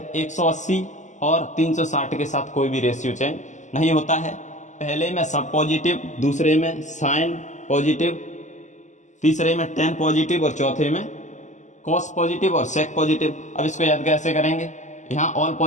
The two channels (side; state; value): right; late; 0.35 ms